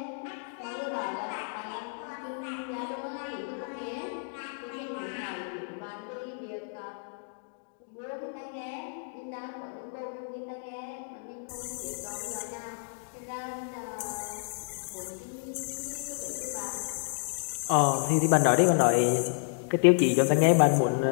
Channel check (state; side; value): silent; right; digital silence